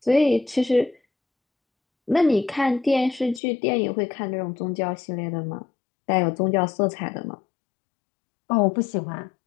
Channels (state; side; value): drops out; right; at 3.4 s